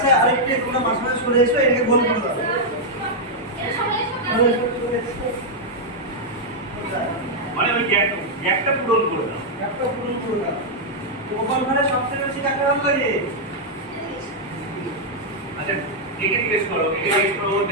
আরেকটু তোমরা মাঝখানে সরে এসো এটাকে গোল করে দাও মানে ওই গ্যাপটা পূরণ করে দাও একটা পূরণ করে দাও তোমার ঘরে সবচেয়ে বেশি কাকে ভালো লাগে আচ্ছা একে জিজ্ঞেস করো ও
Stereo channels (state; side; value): normal; both; correlation -0.04